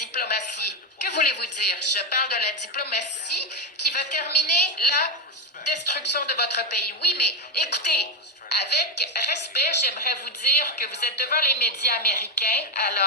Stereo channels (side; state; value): both; normal; correlation 0.09